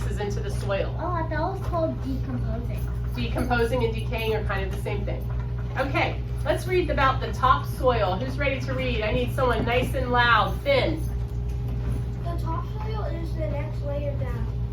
into the soil. Oh, I thought it was called decomposing. Decomposing and decaying are kind of the same thing. Okay, let's read about the topsoil. Who's ready to read? I need someone nice and loud. Finn. The topsoil is the next layer down.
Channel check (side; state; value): both; identical; correlation 1.00